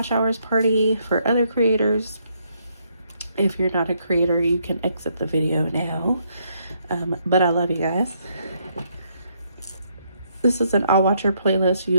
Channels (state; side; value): inverted; both; correlation -0.73